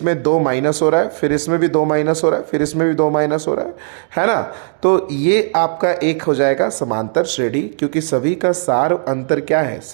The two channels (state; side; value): silent; left; 68 dB below the other